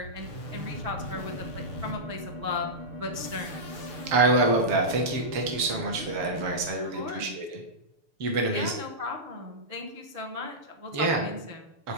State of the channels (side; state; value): left; late; 6.8 ms